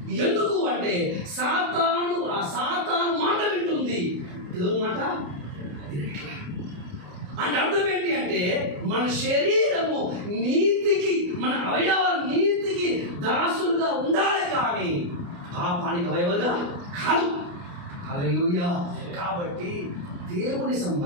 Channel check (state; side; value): late; left; 29 ms